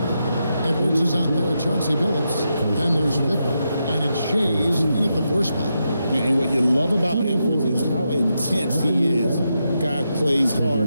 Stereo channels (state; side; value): inverted; both; correlation -0.85